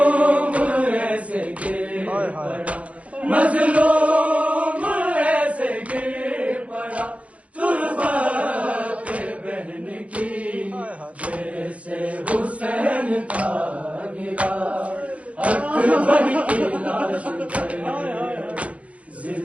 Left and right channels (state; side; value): late; left; 0.065 ms